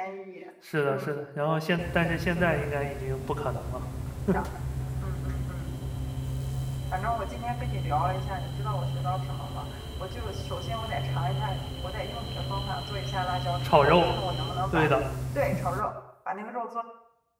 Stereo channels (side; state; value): both; identical; correlation 1.00